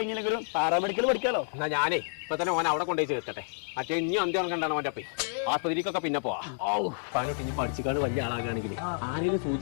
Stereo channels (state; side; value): silent; right; digital silence